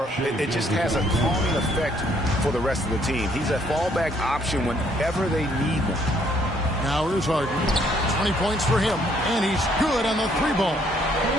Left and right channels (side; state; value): both; normal; correlation 0.66